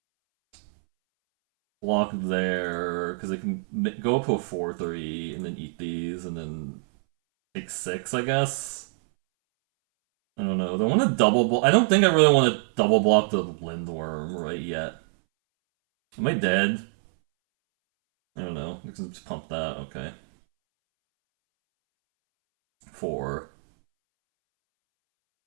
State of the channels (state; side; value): silent; left; 61 dB below the other